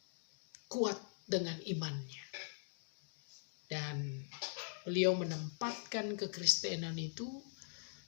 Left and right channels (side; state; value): right; silent; digital silence